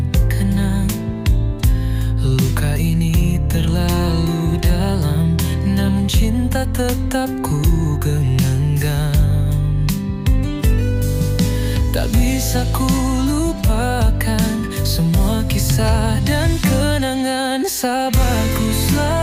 kenang. Luka ini terlalu dalam, namun cinta tetap ku genggam. Tak bisa ku lupakan semua kisah dan kenangan. Sabarku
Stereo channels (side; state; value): both; identical; correlation 1.00